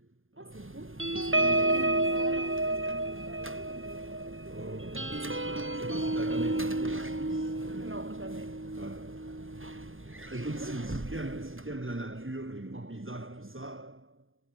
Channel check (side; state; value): left; late; 0.59 ms